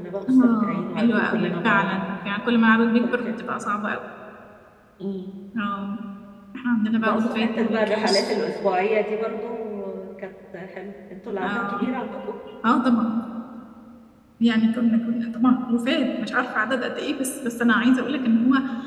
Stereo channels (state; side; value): identical; both; correlation 1.00